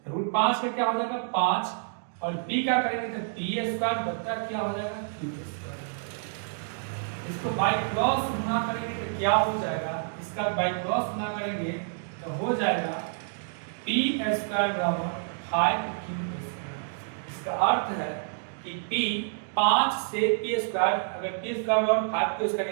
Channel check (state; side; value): silent; left; digital silence